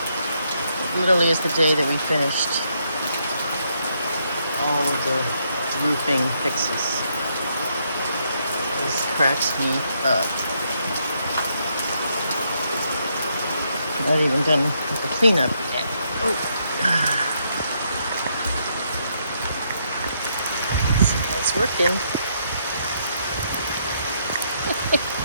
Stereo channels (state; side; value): inverted; both; correlation -0.75